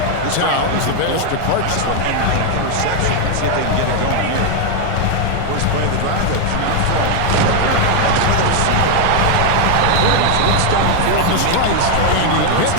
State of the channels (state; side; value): different; both; correlation 0.01